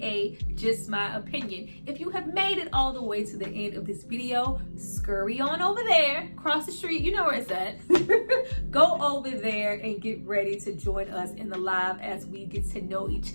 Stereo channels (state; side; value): inverted; both; correlation -1.00